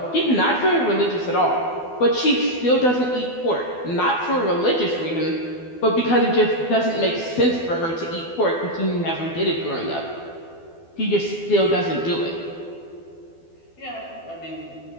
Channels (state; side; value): late; right; 12 ms